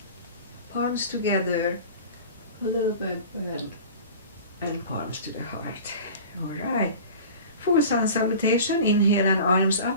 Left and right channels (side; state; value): both; inverted; correlation -0.39